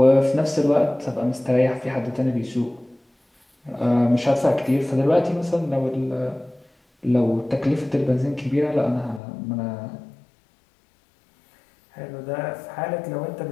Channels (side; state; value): right; drops out; at 9.2 s